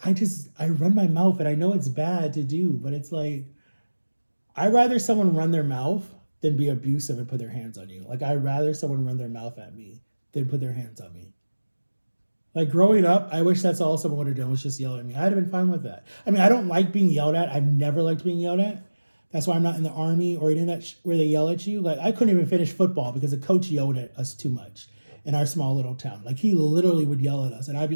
I run my mouth, and I know it's bad to do, but it's like, I'd rather someone run their mouth than be abusive and put their hands on you. Like, I'd rather someone run their mouth at me than put their hands on me. Like, growing up, I wish that's all someone would have done, was just yell at me. I'd have been fine with that. I mean, I don't like being yelled at. I've never liked being yelled at. That's why I'm not in the army or in that where they yell at you. Like, I couldn't even finish football because the coach yelled at us too much in our small little town. Like, he literally would yell at us, and I'd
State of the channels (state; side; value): inverted; both; correlation -1.00